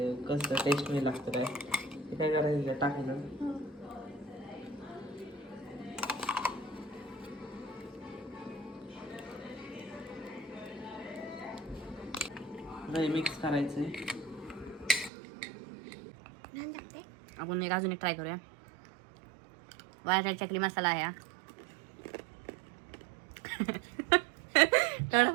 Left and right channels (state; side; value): drops out; left; at 15.1 s